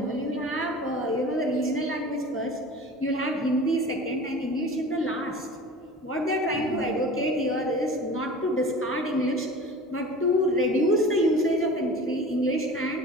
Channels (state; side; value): normal; both; correlation 0.39